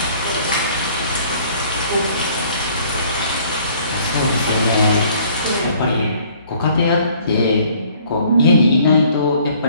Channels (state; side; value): inverted; both; correlation -0.58